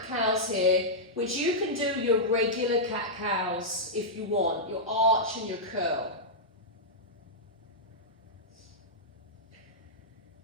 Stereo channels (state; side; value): normal; both; correlation -0.09